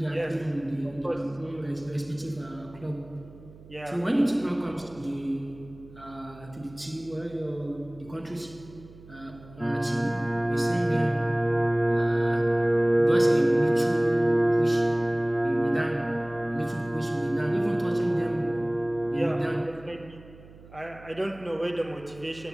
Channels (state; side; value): noise; right; hum, 21 dB below the sound